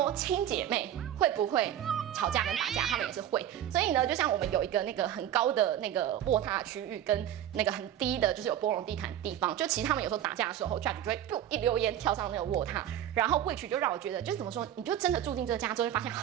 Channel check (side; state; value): left; quieter; 11.2 dB